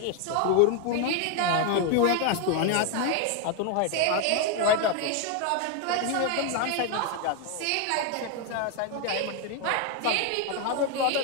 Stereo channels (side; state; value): both; different; correlation 0.01